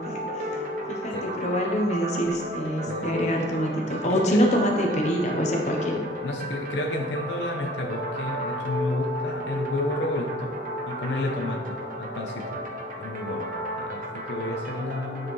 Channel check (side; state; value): both; normal; correlation 0.51